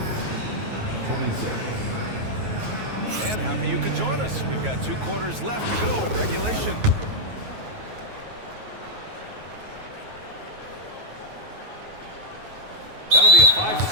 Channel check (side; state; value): left; late; 9.3 ms